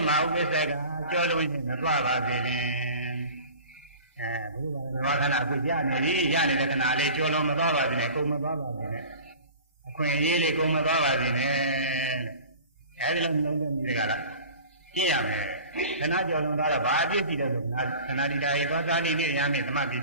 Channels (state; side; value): inverted; both; correlation -0.41